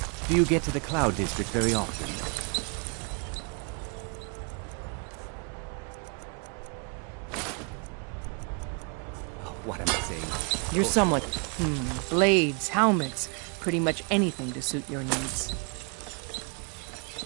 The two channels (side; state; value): left; quieter; 36.1 dB